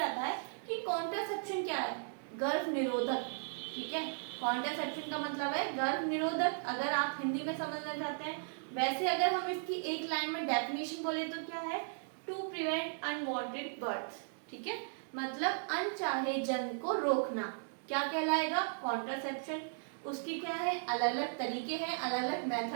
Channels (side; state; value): left; silent; digital silence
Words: आता है कि कॉन्ट्रासेप्शन क्या है, गर्भ निरोधक। ठीक है, कॉन्ट्रासेप्शन का मतलब है गर्भ निरोधक, अगर आप हिंदी में समझना चाहते हैं। वैसे अगर हम इसकी एक लाइन में डेफिनेशन बोले तो क्या है, टू प्रिवेंट अनवांटेड बर्थ। ठीक है, मतलब अनचाहे जन्म को रोकना क्या कहलाएगा, कॉन्ट्रासेप्शन। उसकी क्या है, अलग अलग तरीके हैं, अलग अलग